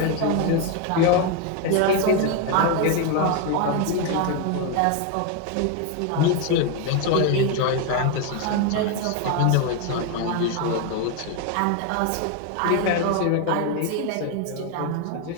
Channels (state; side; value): different; both; correlation 0.01